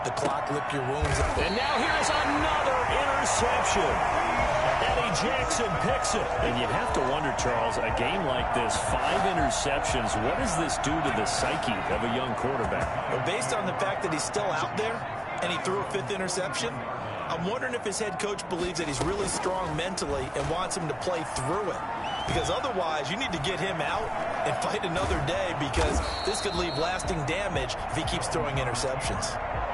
the clock, lick your wounds. And now here's another interception. Eddie Jackson picks it. And you have to wonder, Charles, a game like this, 5 interceptions, what does this do to the psyche of a young quarterback? Well, based on the fact that he's still out there and he threw a 5th interception, I'm wondering if his head coach believes that he's really strong mentally and wants him to play through it. Because otherwise, you need to get him out and fight another day because this could leave lasting damage if he keeps throwing interceptions.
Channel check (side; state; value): both; identical; correlation 1.00